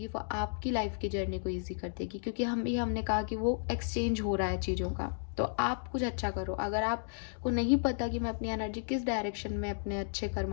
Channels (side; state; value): right; silent; digital silence